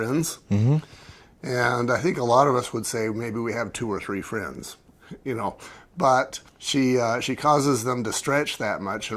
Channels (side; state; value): both; identical; correlation 1.00